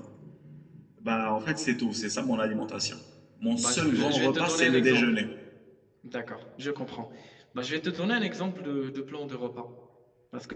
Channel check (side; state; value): both; identical; correlation 1.00